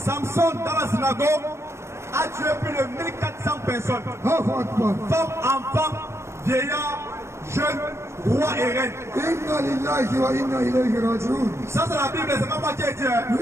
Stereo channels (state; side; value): late; left; 0.13 ms